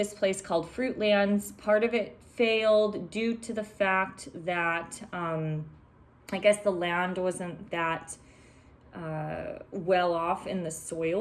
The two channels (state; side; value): identical; both; correlation 1.00